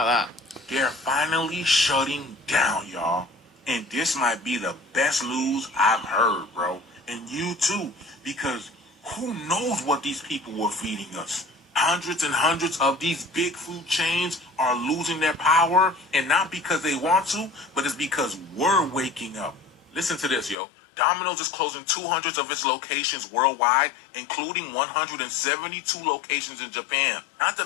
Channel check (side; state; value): right; drops out; at 20.6 s